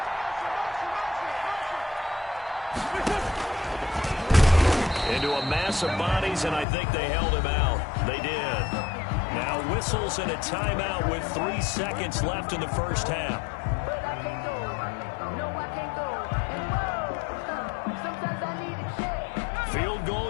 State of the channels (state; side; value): drops out; right; at 6.7 s